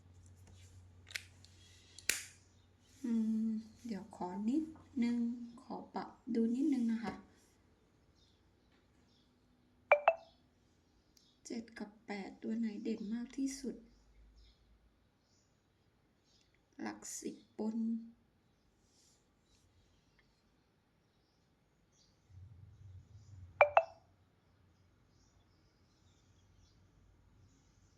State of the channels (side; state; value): both; identical; correlation 1.00